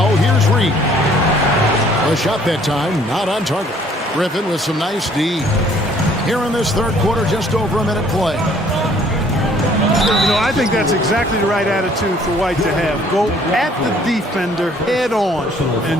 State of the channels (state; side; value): normal; both; correlation 0.59